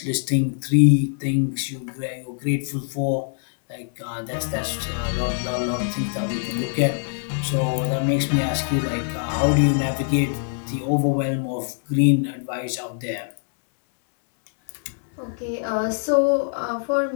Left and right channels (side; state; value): right; silent; 63 dB below the other